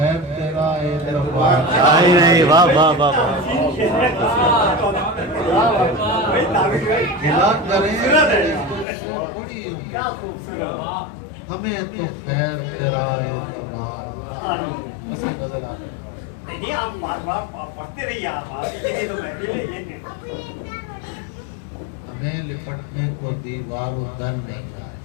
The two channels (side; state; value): right; drops out; at 8.8 s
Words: تیرا اے دربار نہیں۔ واہ واہ واہ گلا کریں بڑی امید، ہمیں تو خیر تیرا اے دربار۔ بس یہ غزل آتا ہے۔ ہمیں لپٹنے کو دیوار و در نہیں آئے،